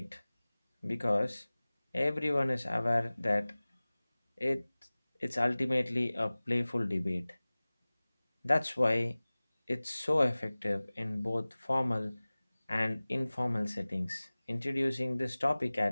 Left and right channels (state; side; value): inverted; both; correlation -0.99